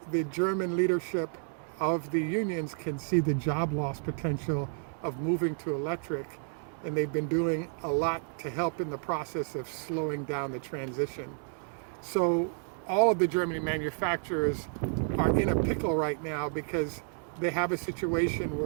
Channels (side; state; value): left; silent; 57 dB below the other